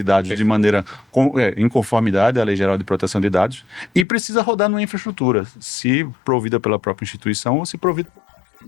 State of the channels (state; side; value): drops out; right; at 4.0 s